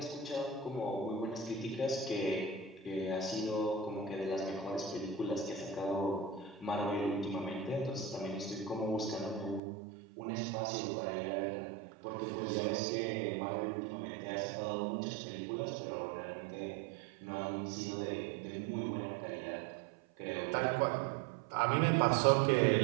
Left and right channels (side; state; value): left; drops out; at 9.6 s